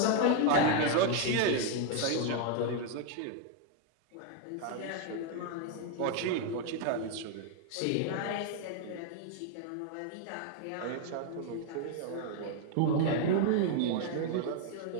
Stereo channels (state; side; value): different; both; correlation 0.00